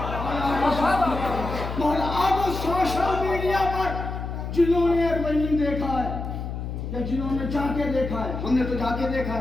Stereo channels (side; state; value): left; noise; hum, 6 dB below the sound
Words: अब सोशल मीडिया पर जिन्होंने अरबईन देखा है या जिन्होंने जाके देखा है, हमने तो जाके देखा